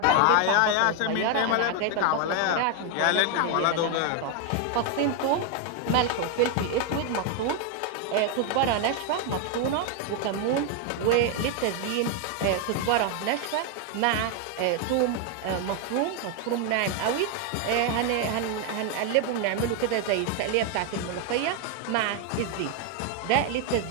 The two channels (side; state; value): both; different; correlation 0.01